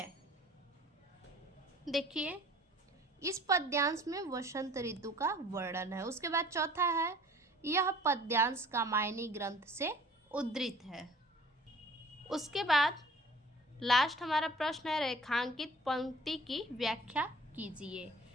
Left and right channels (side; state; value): both; normal; correlation 0.50